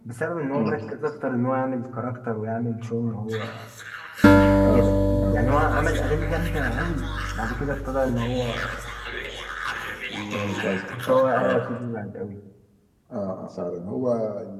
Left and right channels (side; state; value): both; identical; correlation 1.00